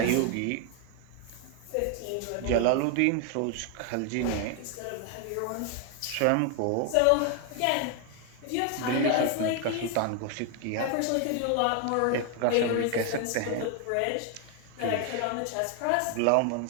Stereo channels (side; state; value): both; different; correlation 0.01